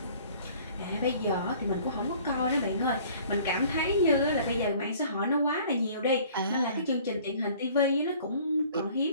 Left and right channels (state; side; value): inverted; both; correlation -0.52